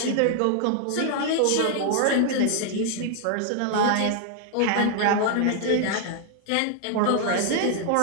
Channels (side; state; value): both; different; correlation 0.00